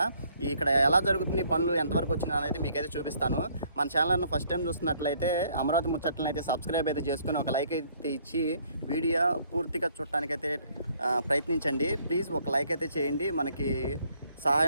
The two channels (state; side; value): inverted; both; correlation -0.64